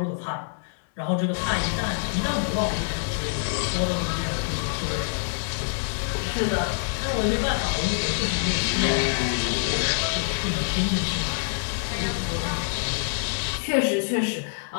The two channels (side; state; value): right; silent; digital silence